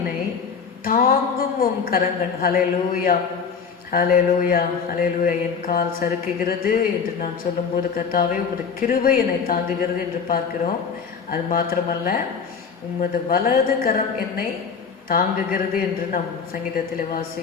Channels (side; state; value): right; quieter; 6.0 dB